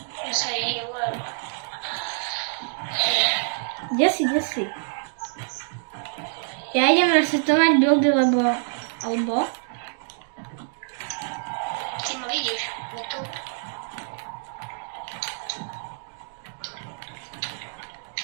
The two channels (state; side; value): silent; left; digital silence